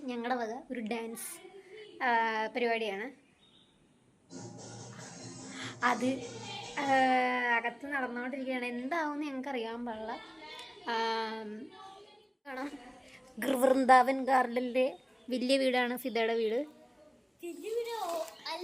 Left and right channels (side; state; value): both; identical; correlation 1.00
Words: ഞങ്ങളുടെ വക ഒരു ഡാൻസ് പരിപാടിയാണ്. അത് അകത്ത് നടന്നുകൊണ്ടിരിക്കുകയാണ്. എന്താവുമെന്ന് ഞങ്ങൾക്ക് അറിയാൻ പാടില്ല. കാണാം, വൃന്ദാവൻ ഗാർഡനിലെ വലിയ വീടാണ് ഫിദയുടെ വീട്.